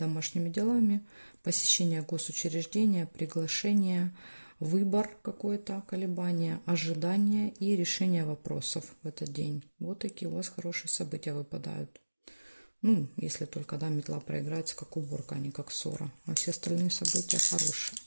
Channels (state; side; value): inverted; both; correlation -1.00